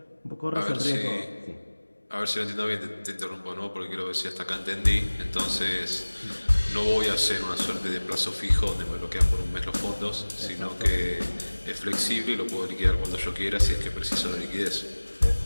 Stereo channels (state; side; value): inverted; both; correlation -1.00